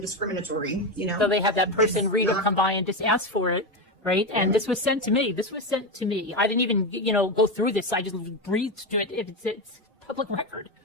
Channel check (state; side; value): normal; both; correlation 0.14